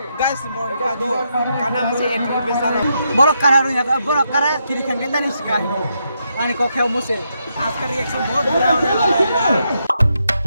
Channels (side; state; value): both; inverted; correlation -0.81